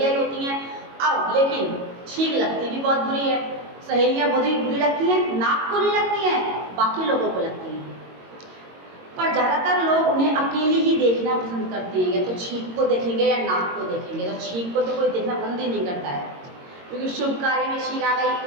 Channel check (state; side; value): late; left; 22 ms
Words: ही होती हैं। अब लेकिन छींक लगती भी बहुत बुरी है। सहेलियां बहुत ही बुरी लगती हैं, नाक को नहीं लगती हैं, बाकी लोगों को लगती हैं। पर ज़्यादातर लोग उन्हें अकेली ही देखना पसंद करते हैं, या तो छींक को देखेंगे या नाक को देखेंगे। तो छींक को तो कोई देखना पसंद ही नहीं करता है, क्योंकि शुभ कार्य में छींक आ